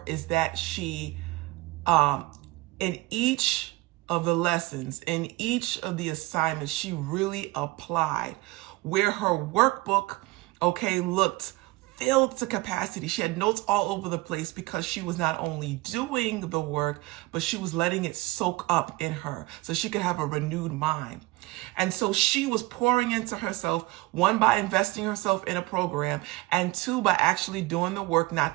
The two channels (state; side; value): quieter; left; 20.5 dB